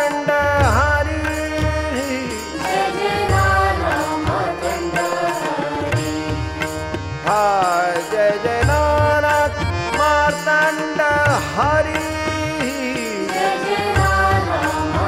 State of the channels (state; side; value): identical; both; correlation 1.00